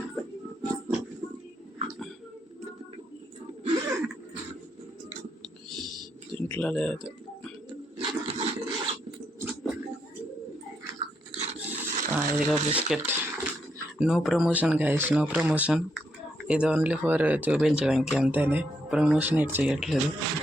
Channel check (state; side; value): normal; both; correlation 0.78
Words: దీంట్లో లేదు. ఇదిగో biscuit. No promotion guys, no promotion. ఇది ఓన్లీ ఫర్ చూపించడానికి అంతేనే. ప్రమోషన్ ఎట్ చేయట్లేదు.